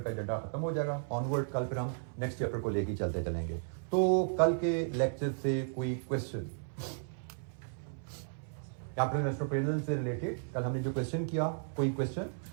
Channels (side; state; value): left; silent; 55 dB below the other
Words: का एजेंडा खत्म हो जाएगा ऑनवर्ड। कल फिर हम नेक्स्ट चैप्टर को लेकर चलते चलेंगे। तो कल के लेक्चर से कोई क्वेश्चन कैपिटल इन्वेस्टमेंट प्रिजल से रिलेटेड कल हमने जो क्वेश्चन किया, कोई क्वेश्चन